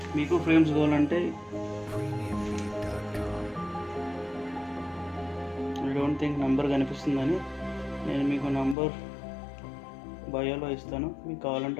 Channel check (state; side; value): drops out; right; at 8.8 s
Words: మీకు ఫ్రేమ్స్ కావాలంటే ఐ డోంట్ థింక్ నంబర్ కనిపిస్తుందని నేను మీకు నంబర్ బయోలో ఇస్తాను. మీకు